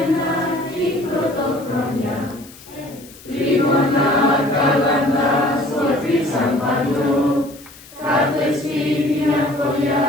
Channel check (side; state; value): left; noise; hiss, 21 dB below the sound